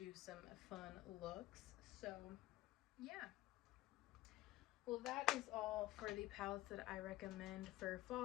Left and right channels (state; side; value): quieter; right; 17.2 dB